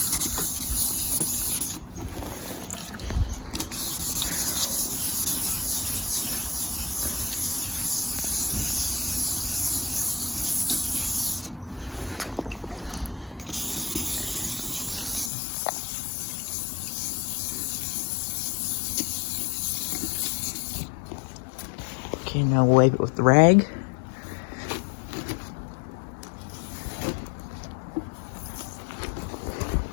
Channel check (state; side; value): drops out; right; at 15.3 s